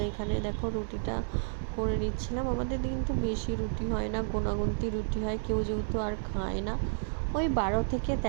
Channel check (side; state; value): left; silent; digital silence